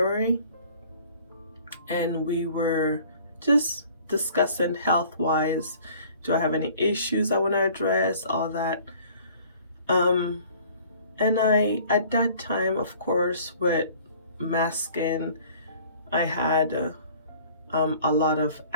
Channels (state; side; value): inverted; both; correlation -0.52